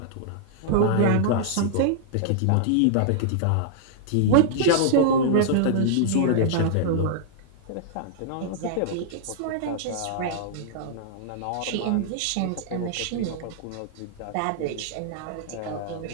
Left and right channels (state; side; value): different; both; correlation -0.01